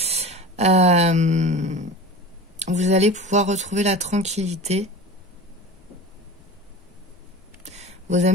Vous allez pouvoir retrouver la tranquillité. Vos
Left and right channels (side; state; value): both; normal; correlation 0.34